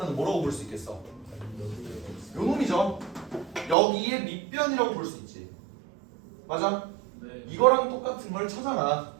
뭐라고 볼 수 있겠어? 요 놈이죠. 여기에 밑변이라고 볼 수 있지. 맞아? 네. 이거랑 똑같은 걸 찾아라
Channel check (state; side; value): drops out; left; at 3.8 s